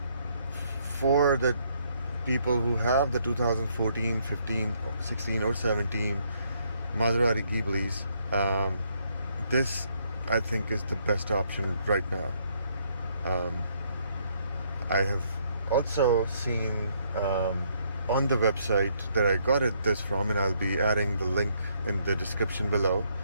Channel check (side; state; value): both; inverted; correlation -0.70